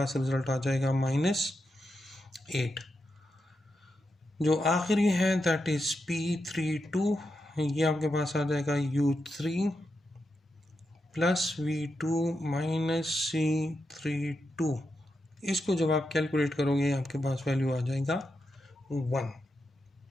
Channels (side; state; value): both; normal; correlation 0.86